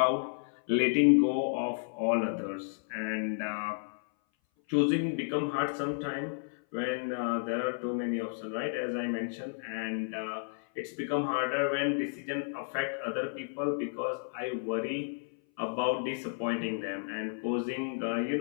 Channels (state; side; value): silent; right; 56 dB below the other